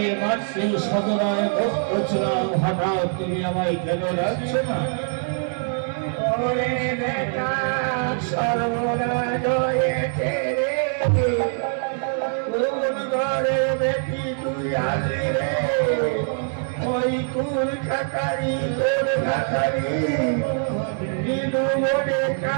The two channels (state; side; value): silent; left; 63 dB below the other